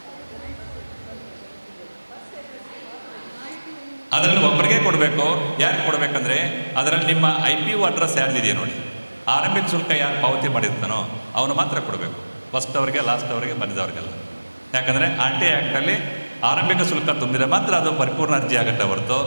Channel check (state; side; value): inverted; both; correlation -1.00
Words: ಅದರಲ್ಲಿ ಒಬ್ಬರಿಗೆ ಕೊಡಬೇಕು. ಯಾರು ಕೊಡಬೇಕಂದ್ರೆ ಅದರಲ್ಲಿ ನಿಮ್ಮ IPO ಅಡ್ರೆಸ್ ಯಾರ್ದಿದೆಯಾ ನೋಡಿ, ಆರಂಭಿಕ ಶುಲ್ಕ ಯಾರು ಪಾವತಿ ಮಾಡಿರ್ತಾನೋ ಅವನು ಮಾತ್ರ ಕೊಡಬೇಕು. ಫಸ್ಟ್ ಅವರಿಗೆ, ಲಾಸ್ಟ್ ಅವರಿಗೆ, ಬಂದಿದ್ದವ್ರಿಗೆಲ್ಲ. ಯಾಕಂದರೆ RTI ಆ್ಯಕ್ಟಲ್ಲಿ ಆರಂಭಿಕ ಶುಲ್ಕ ತುಂಬಿದರೆ ಮಾತ್ರ ಅದು ಪರಿಪೂರ್ಣ ಅರ್ಜಿ ಆಗುತ್ತೆ ಹೊರತು